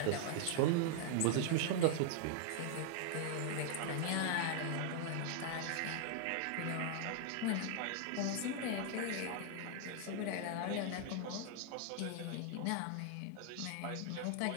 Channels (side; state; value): both; different; correlation 0.00